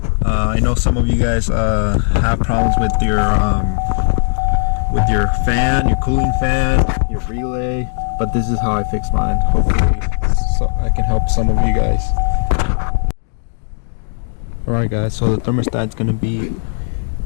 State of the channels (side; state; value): right; silent; digital silence